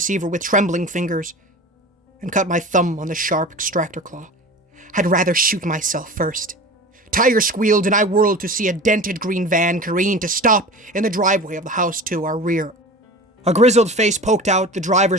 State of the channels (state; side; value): normal; both; correlation 0.36